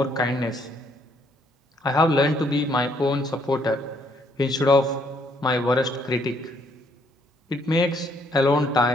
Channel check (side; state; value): both; normal; correlation 0.69